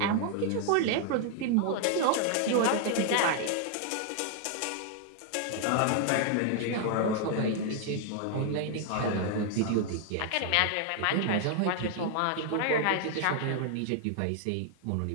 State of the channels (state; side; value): different; both; correlation 0.00